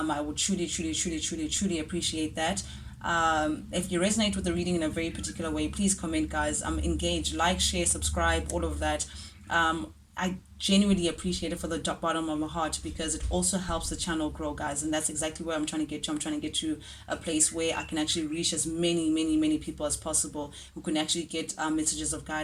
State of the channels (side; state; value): both; identical; correlation 1.00